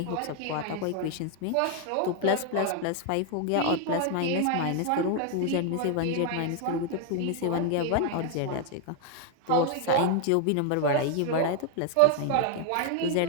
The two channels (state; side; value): different; both; correlation 0.00